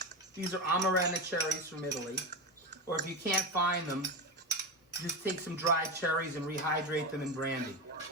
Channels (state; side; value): normal; both; correlation 0.18